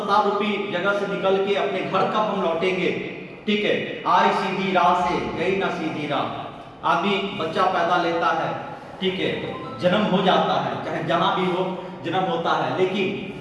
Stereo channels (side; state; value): both; identical; correlation 1.00